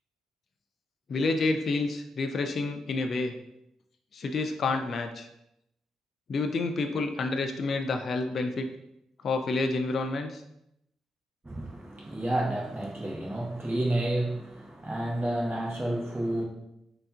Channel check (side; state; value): both; normal; correlation 0.84